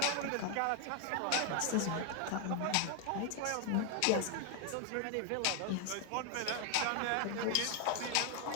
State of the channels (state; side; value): different; both; correlation 0.00